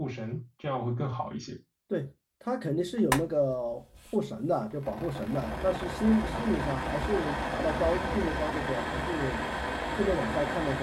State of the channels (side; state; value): both; identical; correlation 1.00